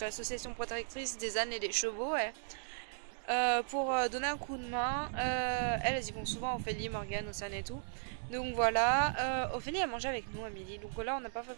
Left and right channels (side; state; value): left; silent; digital silence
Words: l'association protectrice des ânes et des chevaux, pour donner un coup de main. Elles y vont souvent, Ophélie, Morgane, Océane et tout. Donc voilà, Ophélie a mangé avec nous à midi, donc là on n'a pas fait